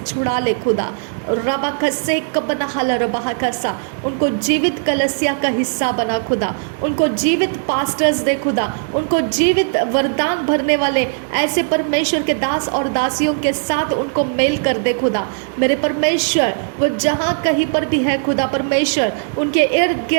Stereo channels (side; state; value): left; silent; digital silence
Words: ले खुदा। रबा खसे कबनहल रबाह खसा, उनको जीवित कलसिया का हिस्सा बना खुदा, उनको जीवित पास्टर्स दे खुदा, उनको जीवित वरदान भरने वाले ऐसे परमेश्वर के दास और दासियों के साथ उनको मेल कर दे खुदा। मेरे परमेश्वर, वो जहाँ कहीं पर भी है खुदा परमेश्वर, उनके इर्द